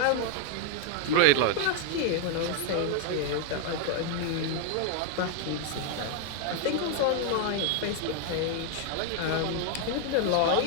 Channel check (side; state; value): both; different; correlation 0.00